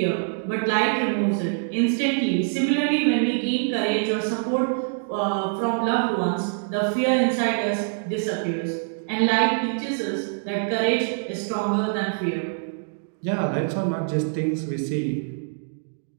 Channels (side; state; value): left; silent; digital silence